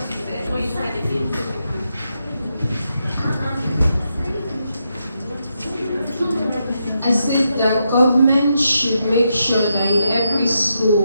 she said? What you said again? I said that government should make sure that in every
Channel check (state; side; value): inverted; both; correlation -0.83